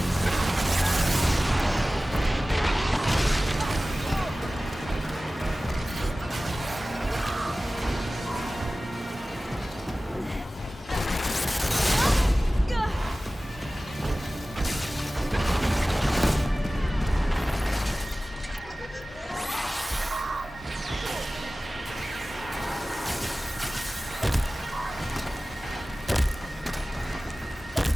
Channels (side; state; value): both; normal; correlation 0.97